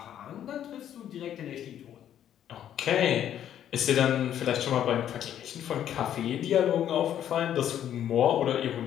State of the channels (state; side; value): quieter; right; 10.5 dB